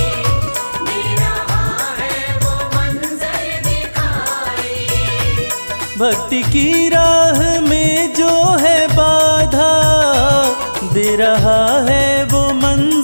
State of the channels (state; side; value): inverted; both; correlation -1.00